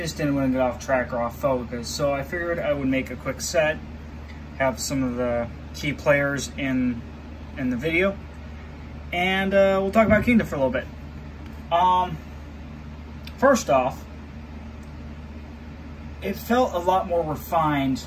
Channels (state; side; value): identical; both; correlation 1.00